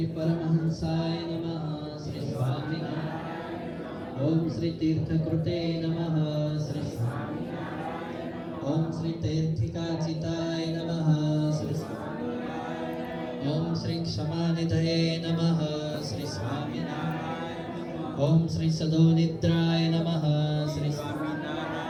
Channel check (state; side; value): identical; both; correlation 1.00